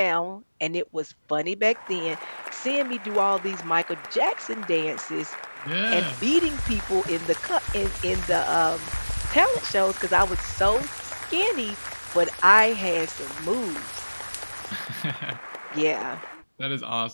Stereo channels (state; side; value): inverted; both; correlation -1.00